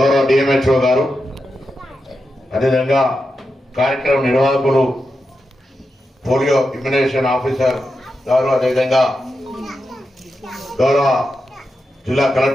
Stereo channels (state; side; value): normal; both; correlation 0.88